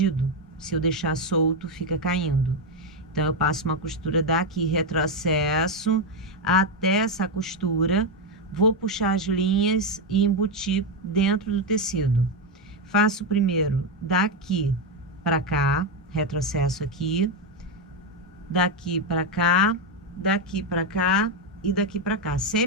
Se eu deixar solto, fica caindo. Então, eu passo uma costura daqui, retrocesso até essa costura, vou puxar as linhas e embutir dentro do tecido. Faço primeiro daqui para cá, retrocesso aqui, daqui para cá, daqui para cá e daqui para cá,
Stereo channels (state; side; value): normal; both; correlation 0.06